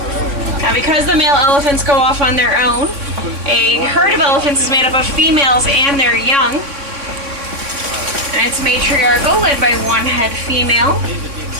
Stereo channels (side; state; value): left; late; 3.6 ms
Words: Now, because the male elephants go off on their own, a herd of elephants is made up of females and their young. And it's matriarchal, led by one head female.